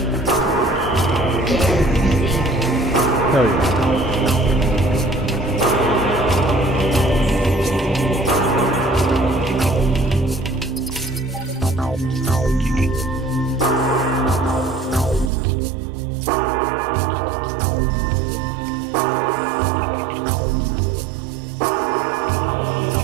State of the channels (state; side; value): drops out; left; at 15.3 s